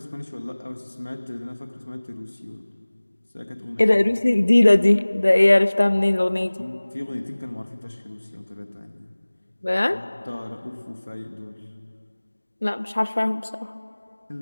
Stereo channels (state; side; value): inverted; both; correlation -1.00